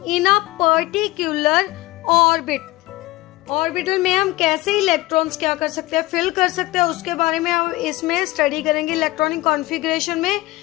in a particular orbit. Orbital में हम कैसे इलेक्ट्रॉन्स क्या कर सकते हैं, फिल कर सकते हैं, उसके बारे में हम इसमें स्टडी करेंगे इलेक्ट्रॉनिक कॉन्फ़िगरेशन में.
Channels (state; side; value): quieter; right; 19.4 dB